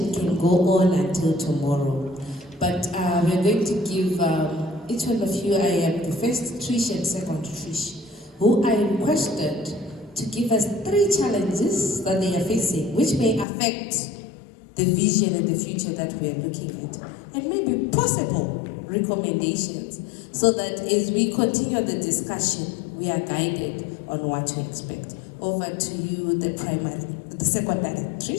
can go on until tomorrow. But we're going to give each one of you, I am the first Trish and second Trish, who I requested to give us 3 challenges that they are facing, which may affect the vision and the future that we are looking at, and maybe possible recommendations, so that as we continue the discussion, we are guided on what to expect. Over to you, the secondary,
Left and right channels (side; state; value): right; drops out; at 13.5 s